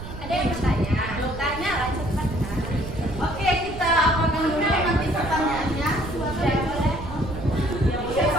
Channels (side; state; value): right; noise; rumble, 11 dB below the sound